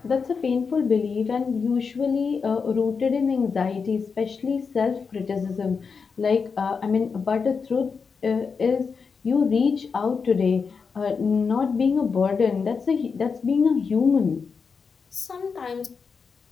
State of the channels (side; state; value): right; quieter; 5.4 dB